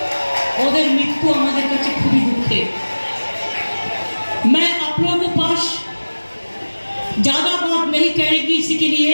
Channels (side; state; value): both; inverted; correlation -1.00